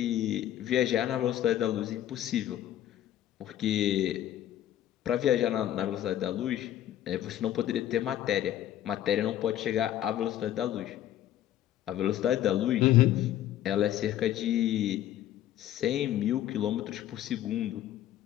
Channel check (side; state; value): right; quieter; 12.1 dB